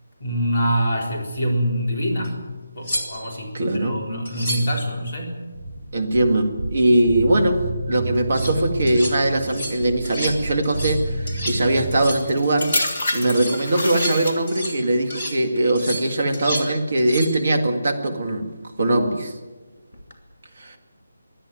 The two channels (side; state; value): both; inverted; correlation -0.85